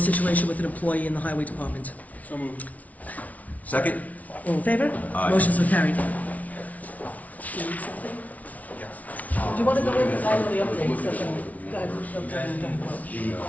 with an employee in the highway department. So moved. Second? All in favor? Aye. Motion so carried. Do you want to go in, because I know the update, so The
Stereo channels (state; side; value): late; right; 0.071 ms